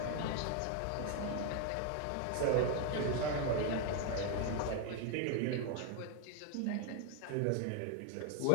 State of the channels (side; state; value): both; different; correlation 0.01